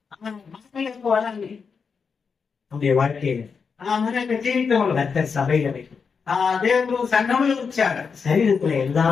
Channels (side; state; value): right; quieter; 5.7 dB